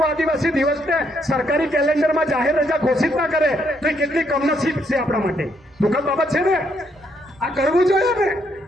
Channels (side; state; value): both; normal; correlation 0.73